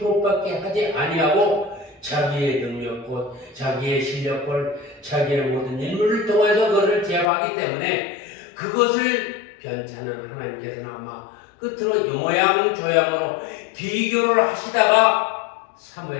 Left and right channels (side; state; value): right; drops out; at 7.2 s